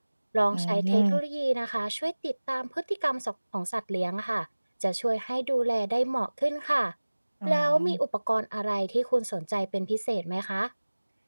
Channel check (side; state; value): both; inverted; correlation -1.00